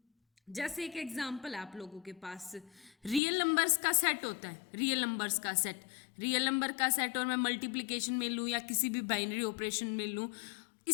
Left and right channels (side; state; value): right; drops out; at 3.2 s